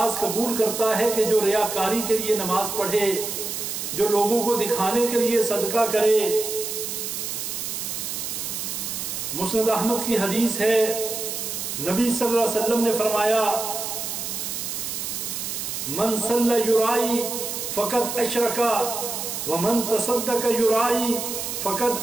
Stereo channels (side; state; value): right; noise; hiss, 4 dB below the sound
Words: قبول کرتا ہے کہ جو ریاکاری کے لیے نماز پڑھے، جو لوگوں کو دکھانے کے لیے صدقہ کرے۔ مسند احمد کی حدیث ہے، نبی صلی اللہ علیہ وسلم نے فرمایا من صلی یرائی فقد اشرکا ومن تصدق یرائی